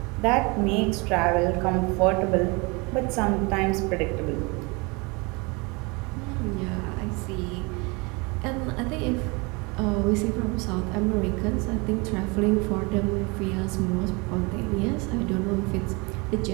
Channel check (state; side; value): quieter; left; 28.2 dB